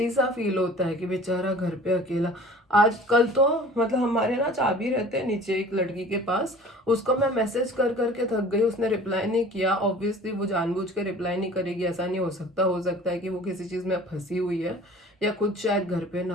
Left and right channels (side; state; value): both; normal; correlation 0.46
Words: सा फील होता है कि बेचारा घर पे अकेला। आज कल तो मतलब हमारे ना चाबी रहते हैं नीचे एक लड़की के पास, उसको मैं मैसेज कर करके थक गई, उसने रिप्लाई नहीं किया। ऑब्वियसली वो जानबूझ के रिप्लाई नहीं करेगी, ऐसा नहीं हो सकता है कि वो किसी चीज़ में फंसी हुई है या कुछ शायद घर पे ना